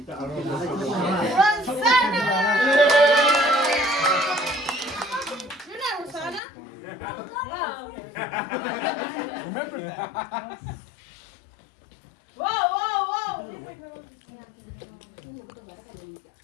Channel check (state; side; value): drops out; right; at 6.4 s